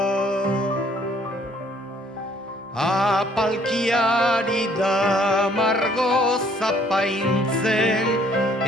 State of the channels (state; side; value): normal; both; correlation 0.62